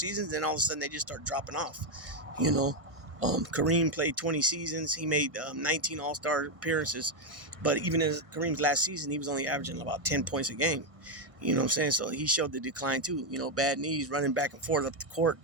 and all of a sudden they just start dropping off. Kareem played 20 seasons. He made 19 All-Star appearances. But even in Kareem's last season, he was only averaging about 10 points a game. You know what I'm saying? So he showed the decline too. Bad knees, running back and forth up the court,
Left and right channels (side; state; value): left; late; 1.6 ms